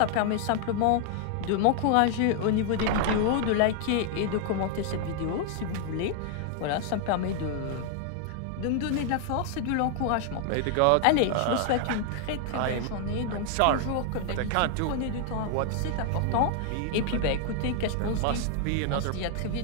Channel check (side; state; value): both; different; correlation 0.00